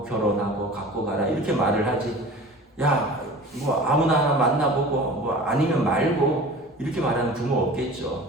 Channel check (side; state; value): both; normal; correlation 0.40